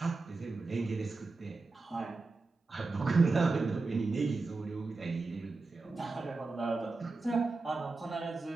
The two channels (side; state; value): left; quieter; 3.7 dB